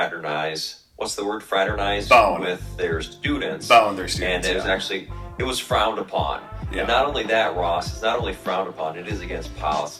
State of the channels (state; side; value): identical; both; correlation 1.00